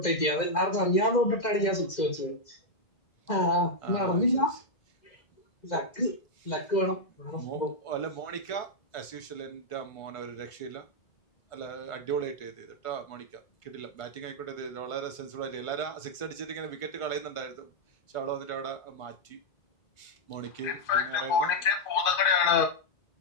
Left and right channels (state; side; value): late; right; 2.5 ms